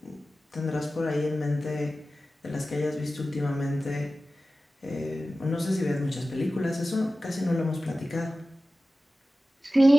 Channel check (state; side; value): normal; both; correlation 0.95